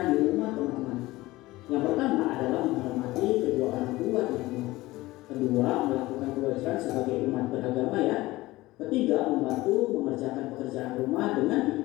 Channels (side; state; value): right; quieter; 18.8 dB